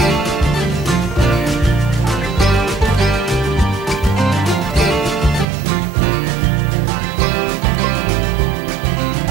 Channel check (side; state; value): left; drops out; at 5.5 s